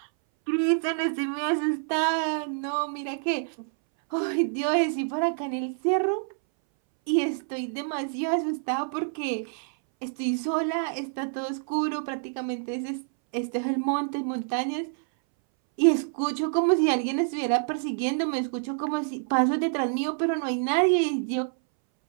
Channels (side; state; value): left; silent; 60 dB below the other